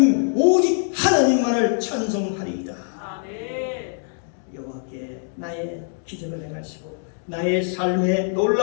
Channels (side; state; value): right; silent; digital silence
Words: 오직 하나님만을 찬송하리이다. 여호와께 나의 기적을 행하시고 나의 삶에